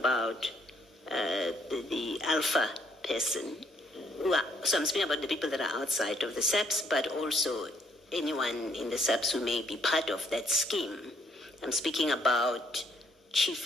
the Alpha person, So I'm speaking about the people that are outside of the SAPS, but also anyone in the SAPS who may be part of that scheme. I'm speaking about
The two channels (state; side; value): normal; both; correlation 0.69